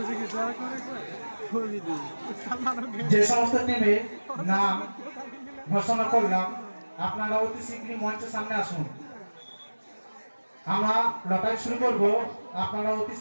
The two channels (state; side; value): inverted; both; correlation -1.00